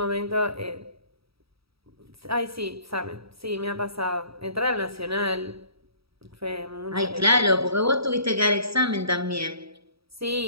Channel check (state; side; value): late; left; 0.77 ms